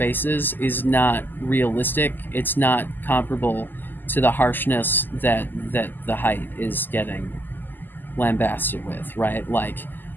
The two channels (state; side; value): late; right; 0.089 ms